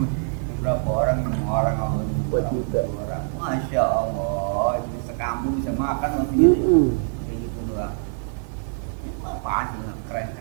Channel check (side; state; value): left; silent; digital silence